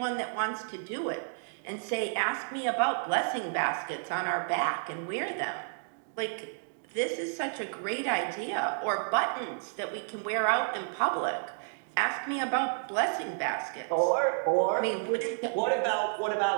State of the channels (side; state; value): left; silent; digital silence